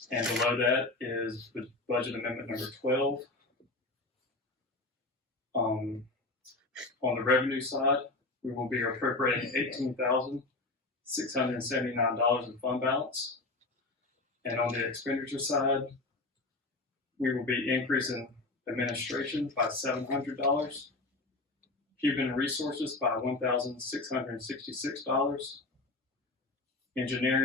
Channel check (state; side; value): quieter; right; 3.2 dB